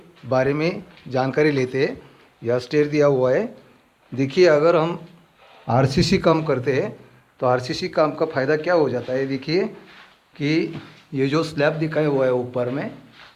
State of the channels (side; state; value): both; identical; correlation 1.00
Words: बारे में जानकारी लेते हैं। यह स्टेयर दिया हुआ है। देखिए अगर हम आरसीसी काम करते हैं तो आरसीसी काम का फ़ायदा क्या हो जाता है। देखिए कि ये जो स्लैब दिखाया हुआ है ऊपर में,